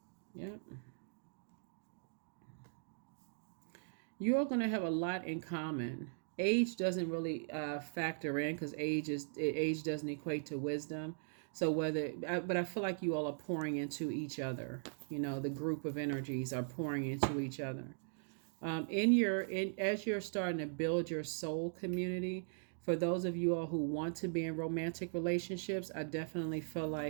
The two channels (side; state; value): left; silent; digital silence